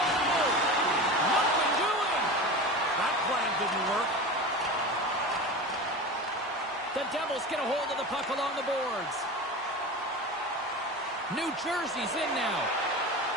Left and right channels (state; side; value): normal; both; correlation 0.29